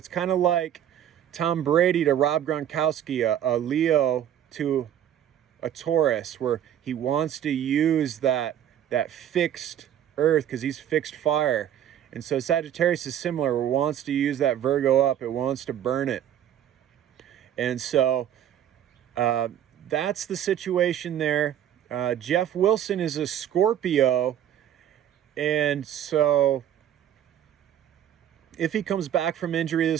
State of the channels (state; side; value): quieter; left; 10.5 dB